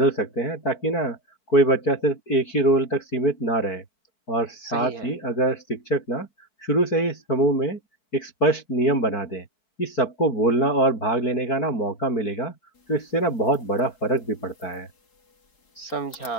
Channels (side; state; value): right; late; 4.5 ms